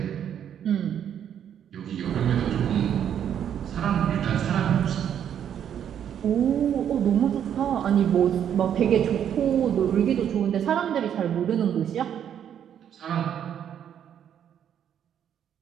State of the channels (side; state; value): left; quieter; 9.3 dB